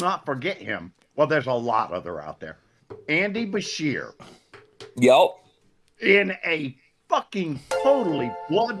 forget him. Well, there's a lot other out there. Andy Bashir. Yep. In a fucking totally blood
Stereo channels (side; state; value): both; identical; correlation 1.00